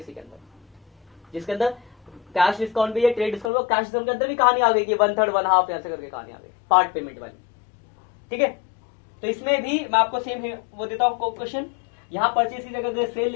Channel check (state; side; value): drops out; right; at 3.5 s